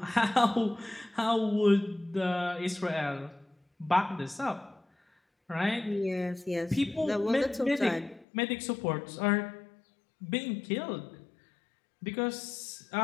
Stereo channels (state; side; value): drops out; right; at 8.2 s